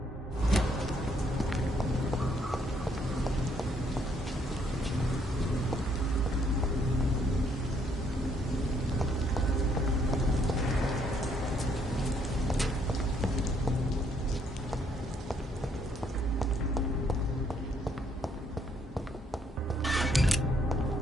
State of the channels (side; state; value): both; normal; correlation 0.69